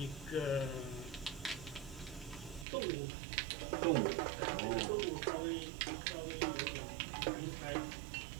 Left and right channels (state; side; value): drops out; left; at 2.7 s